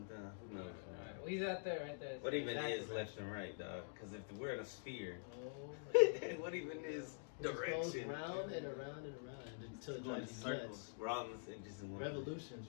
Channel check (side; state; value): right; silent; digital silence